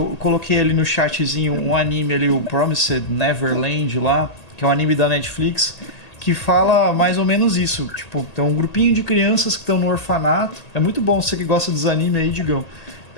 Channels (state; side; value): late; right; 1.8 ms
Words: coloquei ali no chatzinho um anime ali, o Promised Neverland lá, que é um anime da Netflix, que fala mais ou menos isso. Tipo, tem um grupinho de crianças que estão no orfanato. É muito bom, você que gosta dos animes aí, Digão.